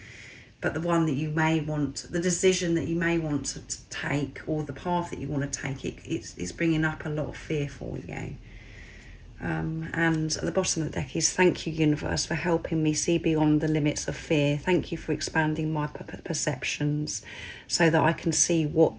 But the one that you may want, the decision that you may want to take, or the path that you want to take, it's bringing up a lot of fear for you. And at the bottom of the deck is, thank you, universe, for helping me see beyond the limits of fear. Thank you for expanding my perceptions so that I can see what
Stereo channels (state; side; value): identical; both; correlation 1.00